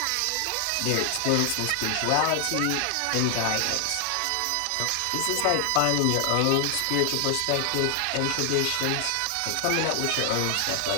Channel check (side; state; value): both; different; correlation 0.00